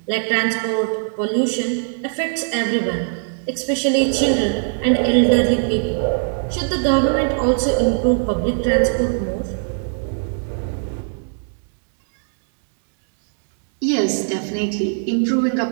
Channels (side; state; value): left; silent; digital silence